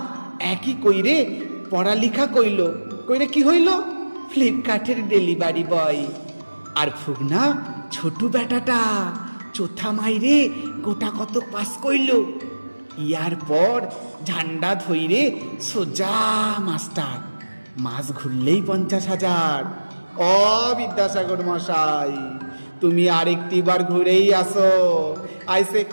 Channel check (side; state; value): both; inverted; correlation -1.00